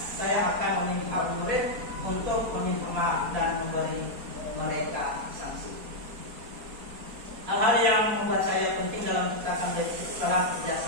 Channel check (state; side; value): late; left; 4.3 ms